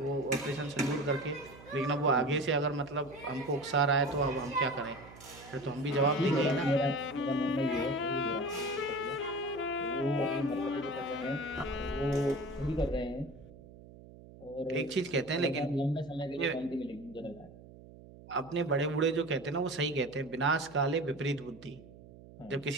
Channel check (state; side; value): noise; right; hum, 19 dB below the sound